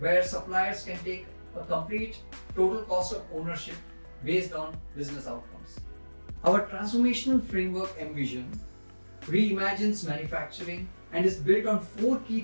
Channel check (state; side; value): inverted; both; correlation -1.00